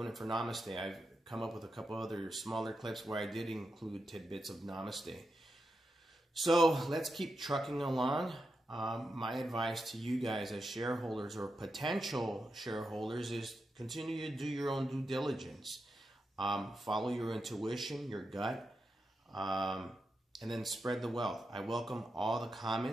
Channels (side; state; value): both; normal; correlation 0.87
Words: for Namaste. I've come up with a couple other smaller clips where I did include tidbits of Namaste. So let's keep trucking along. My advice to you guys as shareholders or potential shareholders is continue to do your own due diligence. Follow your intuition, your gut, and then spread the wealth. I welcome all the